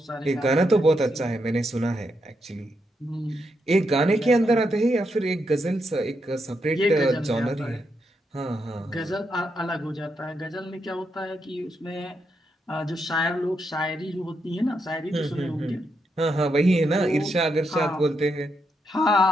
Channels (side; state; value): both; normal; correlation 0.82